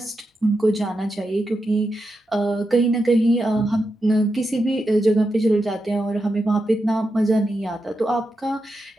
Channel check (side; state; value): both; normal; correlation 0.87